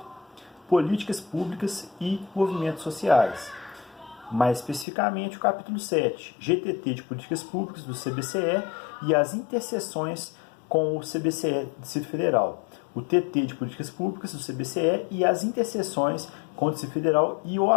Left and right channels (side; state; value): right; drops out; at 4.9 s